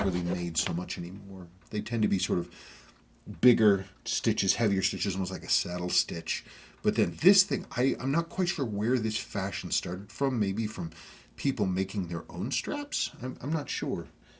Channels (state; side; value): identical; both; correlation 1.00